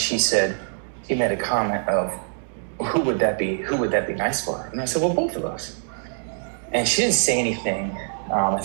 said, he made a comment of, who would that be nice for? And I said, well, both of us. And she didn't say anything. I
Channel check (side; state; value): left; silent; digital silence